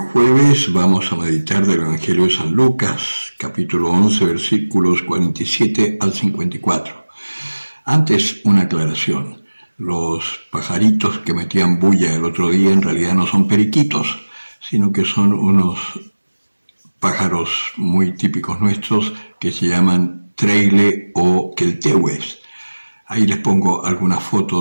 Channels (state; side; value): inverted; both; correlation -1.00